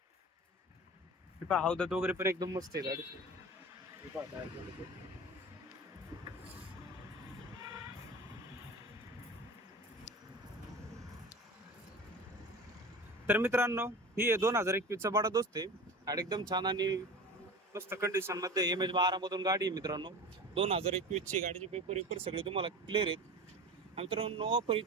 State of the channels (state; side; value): normal; both; correlation 0.34